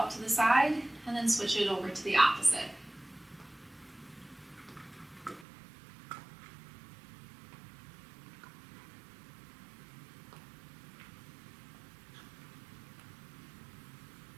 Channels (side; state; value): left; drops out; at 5.5 s